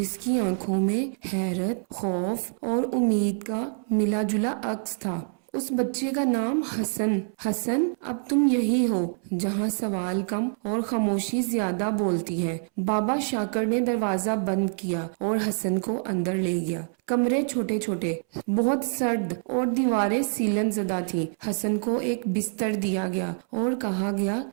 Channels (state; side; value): silent; left; 61 dB below the other